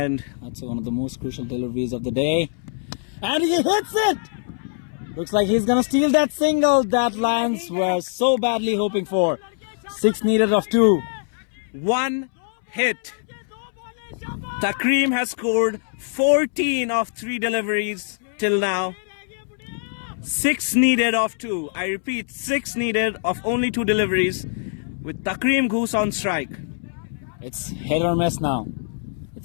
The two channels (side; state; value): right; silent; 63 dB below the other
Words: That's one of the most crucial deliveries of the day. And he hits it! Looks like he's gonna steal that single that Lions were so badly hoping for. 6 needed of 2. 1 hit. Takreem has scored 14 of 3 deliveries till now. 6 needed of 2. I repeat, 6 needed of only 2 deliveries with Takreem Goose on strike. It's hit or miss now.